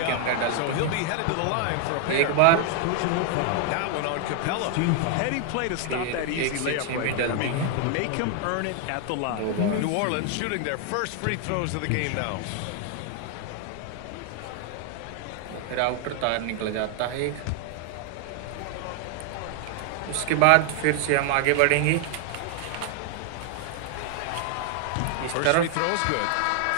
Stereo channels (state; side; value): different; both; correlation 0.00